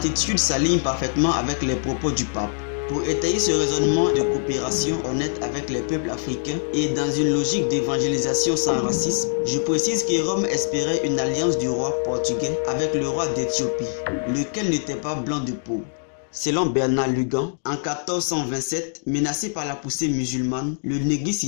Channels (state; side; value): silent; right; digital silence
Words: s'aligne parfaitement avec les propos du pape. Pour étayer ce raisonnement de coopération honnête avec les peuples africains et dans une logique d'évangélisation sans racisme, je précise que Rome espérait une alliance du roi portugais avec le roi d'Éthiopie, lequel n'était pas blanc de peau. Selon Bernard Lugan, en 1427, menacé par la poussée musulmane, le Negus